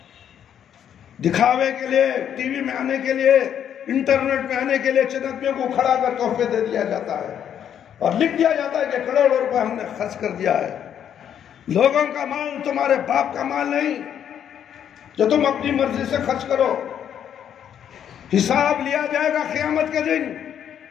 دکھاوے کے لیے، ٹی وی میں آنے کے لیے، انٹرنیٹ میں آنے کے لیے چندیوں کو کھڑا کر تحفے دے دیا جاتا ہے اور لکھ دیا جاتا ہے کہ کروڑوں روپے ہم نے خرچ کر دیا ہے۔ لوگوں کا مال تمہارے باپ کا مال نہیں جو تم اپنی مرضی سے خرچ کرو، حساب لیا جائے گا قیامت کے دن۔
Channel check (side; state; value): right; quieter; 9.2 dB